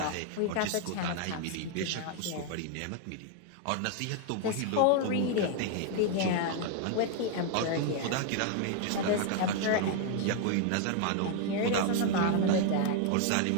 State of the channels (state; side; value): different; both; correlation 0.00